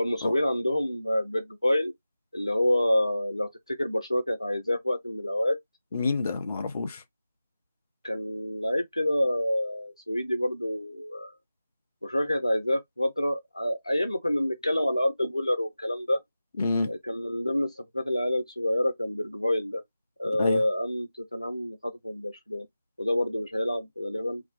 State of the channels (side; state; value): both; inverted; correlation -0.95